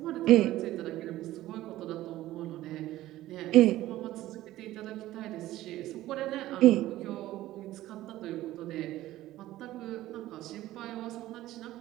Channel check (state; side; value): quieter; left; 15.3 dB